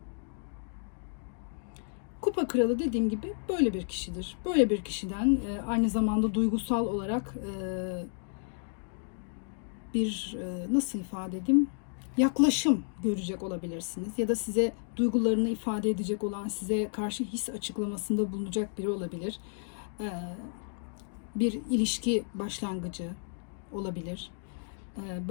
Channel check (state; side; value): silent; right; digital silence